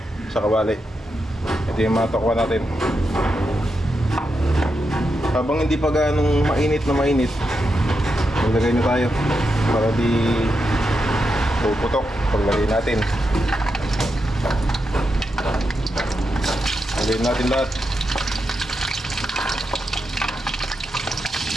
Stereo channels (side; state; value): both; normal; correlation 0.85